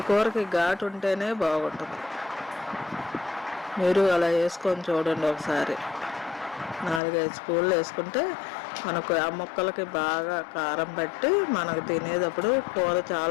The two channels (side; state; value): right; drops out; at 7.0 s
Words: కూరకి ఘాటు ఉంటేనే బాగుంటుంది. మీరు అలా వేసుకొని చూడండి ఒకసారి. 4-5 స్పూన్లు వేసుకుంటే మనకు ఆ ముక్కలకి బాగా కారం పట్టి మనకు తినేటప్పుడు కూర